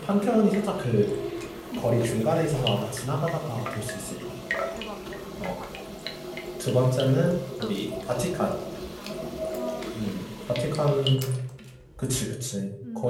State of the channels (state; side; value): identical; both; correlation 1.00